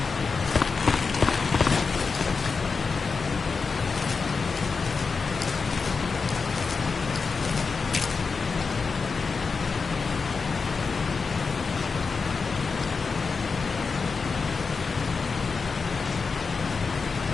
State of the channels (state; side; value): quieter; right; 4.8 dB